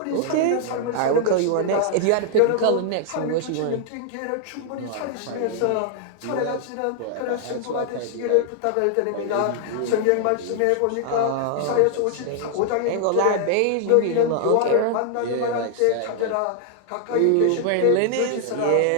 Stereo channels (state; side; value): different; both; correlation -0.01